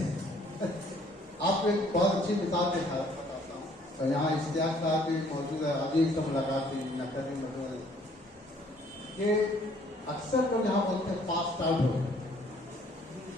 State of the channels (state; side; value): normal; both; correlation 0.60